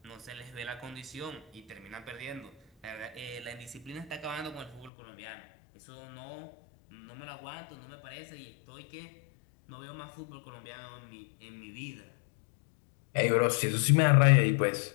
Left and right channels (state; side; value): drops out; right; at 4.9 s